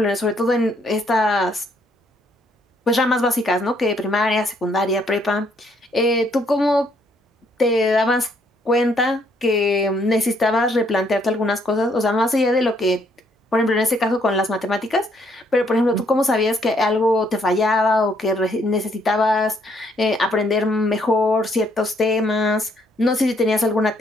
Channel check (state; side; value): normal; both; correlation 0.69